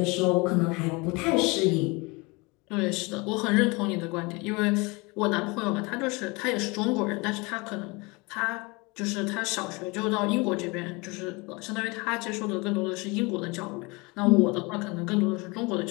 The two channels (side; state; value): right; quieter; 26.4 dB